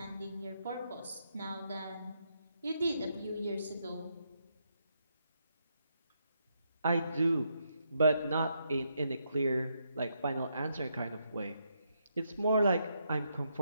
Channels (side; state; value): both; inverted; correlation -0.79